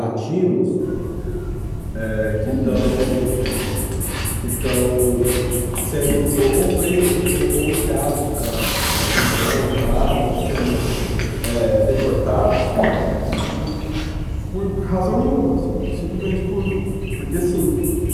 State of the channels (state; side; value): identical; both; correlation 1.00